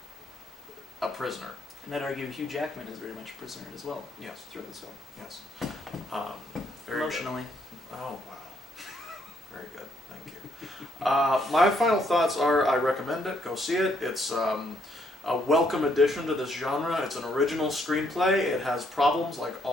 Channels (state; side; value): normal; both; correlation 0.71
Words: a prisoner. And I'd argue Hugh Jackman is very much a prisoner as well. Yes. Throughout this film. Yes. Very Emotionally. Good. Oh wow. Very good. Thank you. My final thoughts are: I recommend it. Go see it. It's a welcome addition to this genre. It's an original screenplay. It has problems like